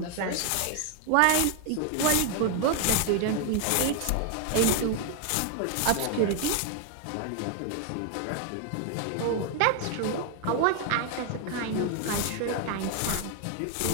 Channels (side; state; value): both; different; correlation 0.00